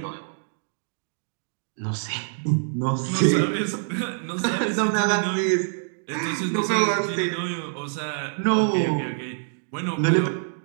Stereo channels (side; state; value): left; silent; digital silence